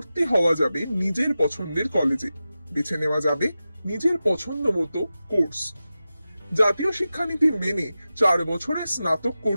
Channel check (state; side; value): inverted; both; correlation -0.93